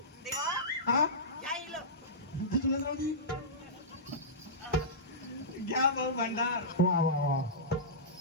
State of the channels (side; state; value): both; normal; correlation -0.17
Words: देवा हा या इलं तुला जाऊ दे घ्या भाऊ भंडार. वा वा वा